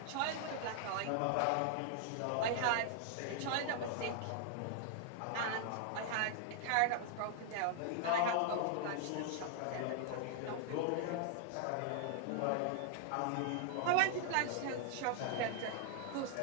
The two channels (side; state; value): both; different; correlation 0.00